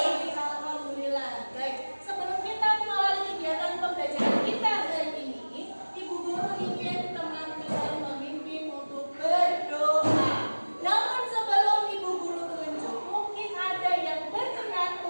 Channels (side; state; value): both; inverted; correlation -1.00